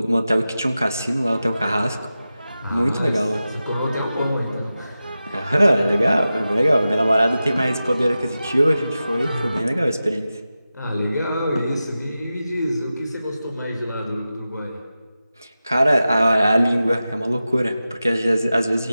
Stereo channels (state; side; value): inverted; both; correlation -0.93